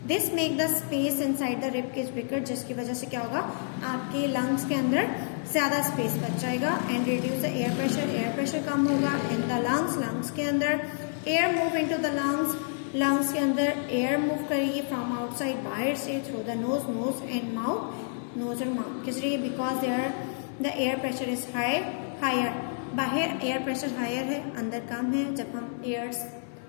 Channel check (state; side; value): silent; right; 59 dB below the other